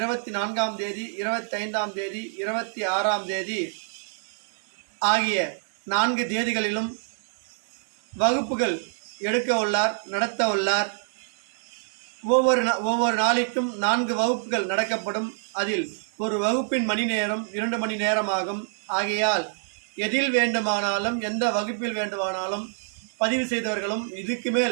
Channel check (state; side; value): silent; left; digital silence